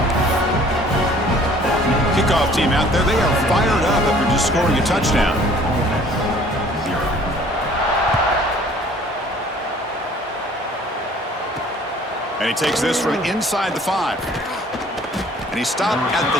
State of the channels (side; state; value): both; normal; correlation 0.54